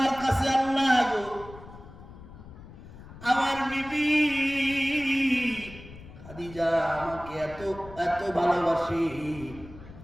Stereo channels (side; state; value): left; noise; rumble, 17 dB below the sound